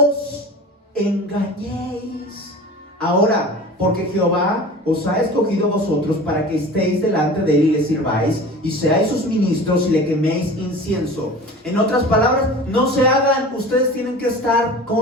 engañéis ahora, porque Jehová os ha escogido a vosotros para que estéis delante de él y le sirváis y seáis sus ministros y le queméis incienso. En otras palabras, no se hagan, ustedes tienen que estar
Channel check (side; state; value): both; normal; correlation 0.38